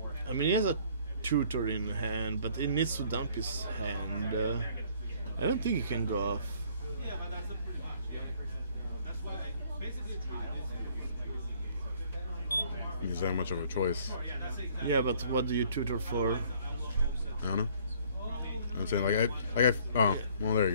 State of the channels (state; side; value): inverted; both; correlation -0.59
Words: I mean, he has a tutor in hand, but he needs to dump his hand. I don't think he can go off. He's that much of a choice. Yeah, but what do you tutor for? I don't know. I'm saying oh, well, there you